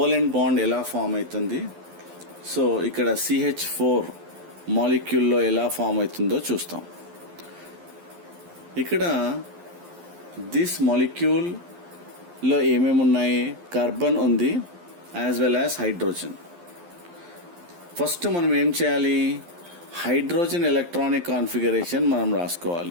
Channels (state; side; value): late; left; 11 ms